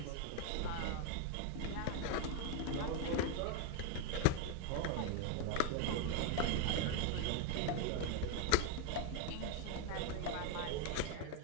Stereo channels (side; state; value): both; different; correlation 0.02